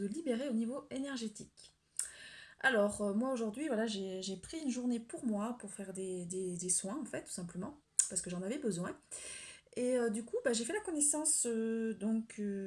libérer au niveau énergétique. Alors moi aujourd'hui, voilà, j'ai pris une journée pour moi pour faire des soins en fait, tout simplement, parce que j'en avais besoin. Et du coup, j'ai fait la connaissance d'une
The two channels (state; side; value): identical; both; correlation 1.00